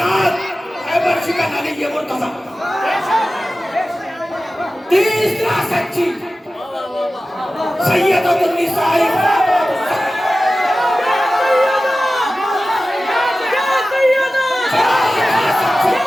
खैबर शिकन अली ये मुर्तज़ा। तीसरा सच्ची सैयदतुन निसाई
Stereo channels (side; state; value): both; normal; correlation 0.95